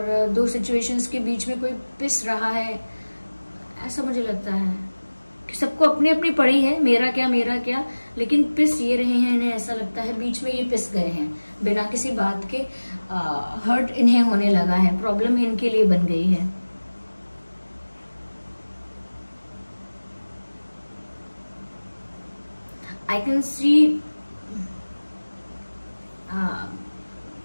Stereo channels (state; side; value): inverted; both; correlation -1.00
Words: दो सिचुएशंस के बीच में कोई पिस रहा है, ऐसा मुझे लगता है कि सबको अपनी अपनी पड़ी है, मेरा क्या, लेकिन पिस ये रहे हैं। इन्हें ऐसा लगता है बीच में ये पिस गए हैं बिना किसी बात के। हर्ट इन्हें होने लगा है, प्रॉब्लम इनके लिए बन गई है। आई कैन सी